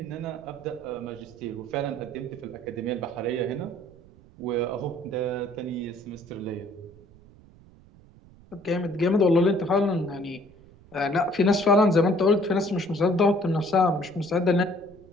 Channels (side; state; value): right; noise; rumble, 24 dB below the sound